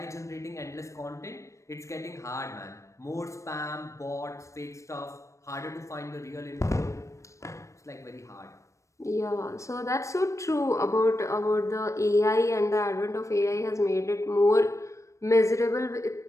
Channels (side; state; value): right; late; 0.15 ms